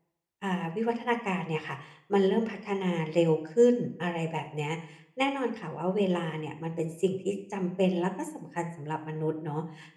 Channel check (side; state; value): both; identical; correlation 1.00